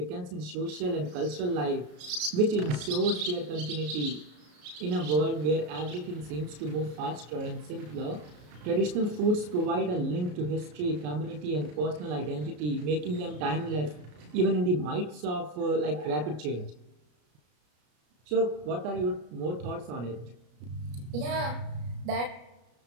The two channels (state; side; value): late; left; 33 ms